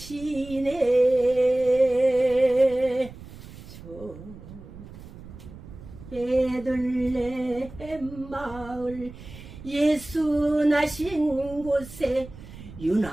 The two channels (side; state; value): right; noise; rumble, 16 dB below the sound